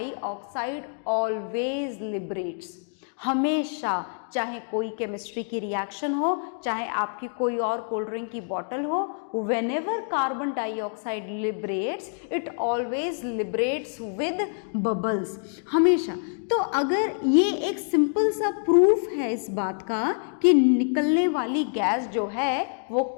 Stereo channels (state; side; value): silent; right; 61 dB below the other